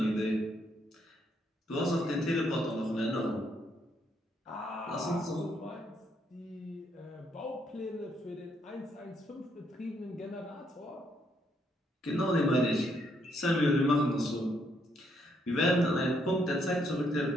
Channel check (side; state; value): both; normal; correlation 0.74